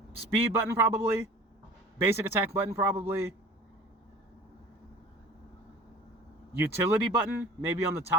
speed button probably, basic attack button probably, utility button, maybe on the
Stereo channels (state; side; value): normal; both; correlation 0.43